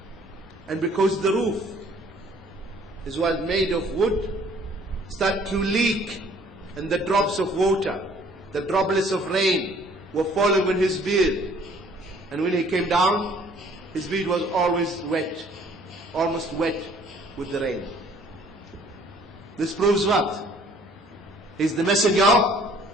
And because the roof was made of wood, started to leak, and the drops of water, the droplets of rain were falling on his beard. And when he came down, his beard was always wet, almost wet with the rain. This proves what? He's the messenger of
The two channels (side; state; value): both; normal; correlation 0.57